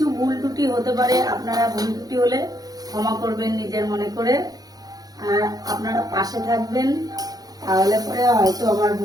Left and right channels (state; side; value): late; left; 0.18 ms